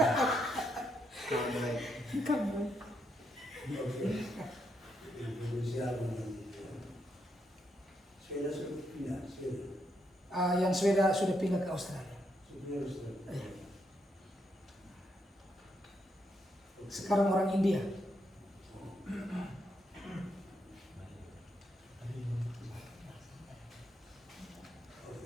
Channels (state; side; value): normal; both; correlation 0.79